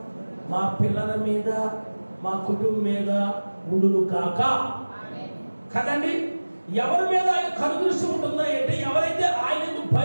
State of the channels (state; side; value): inverted; both; correlation -1.00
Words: మా పిల్లల మీద, మా కుటుంబం మీద ఉండును కాక. కదండి, ఎవరి మీద ఆయన కనుదృష్టి ఉంటుందో అంటే ఎవరైతే ఆయన